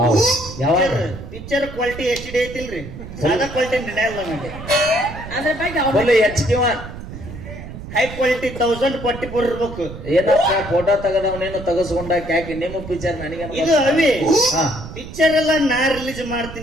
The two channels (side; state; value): right; noise; rumble, 12 dB below the sound